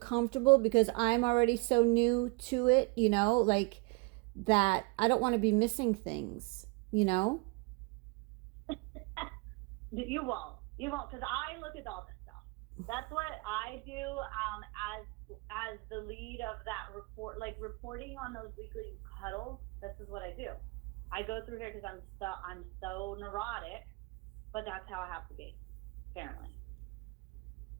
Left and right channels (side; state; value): left; quieter; 28.9 dB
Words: because I'm already so new to it, you know, like that I don't want to be missing things, you know? You won't, because I look at all this stuff. That's what I do as the lead of that report, like reporting on those weekly huddles. This is what I do. I go through here because I'm so neurotic, but that's how I have to be, apparently.